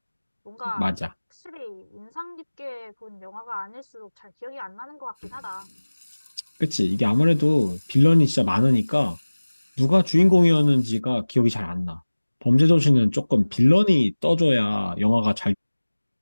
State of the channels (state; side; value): inverted; both; correlation -1.00